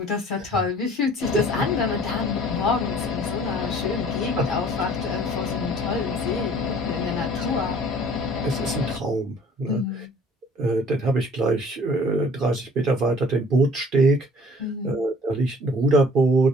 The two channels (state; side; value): normal; both; correlation 0.52